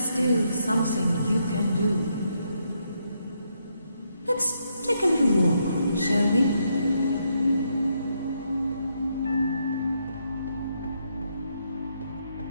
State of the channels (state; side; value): inverted; both; correlation -0.78